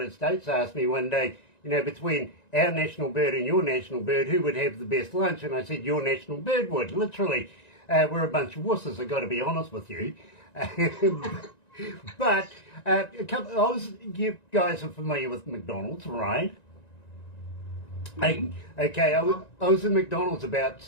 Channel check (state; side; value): late; right; 1.9 ms